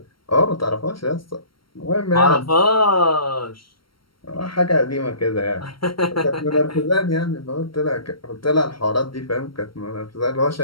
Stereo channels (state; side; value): late; right; 0.74 ms